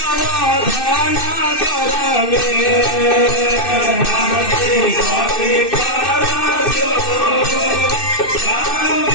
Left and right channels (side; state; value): right; late; 2.6 ms